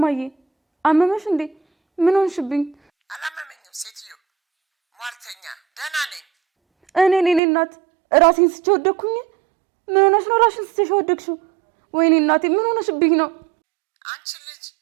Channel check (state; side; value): drops out; left; at 7.4 s